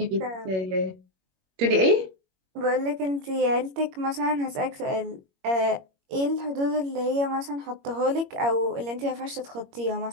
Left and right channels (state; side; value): late; left; 21 ms